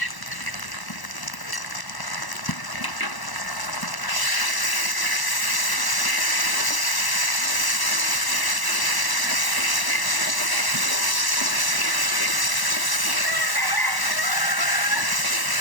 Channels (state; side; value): late; right; 1.0 ms